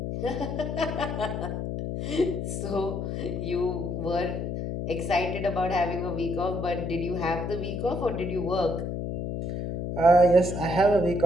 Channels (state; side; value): noise; left; hum, 3 dB below the sound